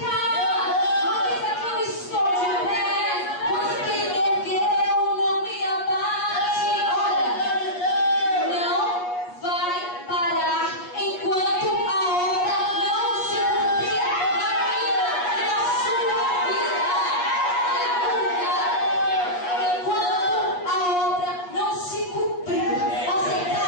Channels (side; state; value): right; late; 8.3 ms